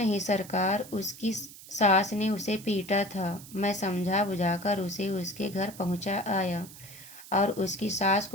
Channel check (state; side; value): noise; right; hiss, 17 dB below the sound